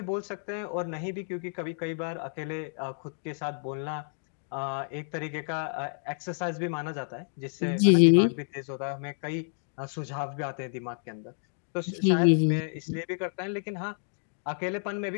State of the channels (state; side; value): silent; right; digital silence